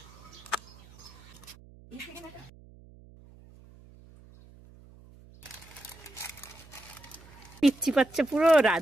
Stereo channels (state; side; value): noise; right; hum, 22 dB below the sound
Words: পিচ্ছি পাচ্ছে, পুরো